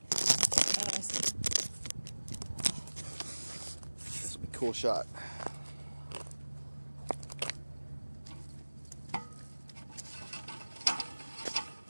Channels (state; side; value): inverted; both; correlation -1.00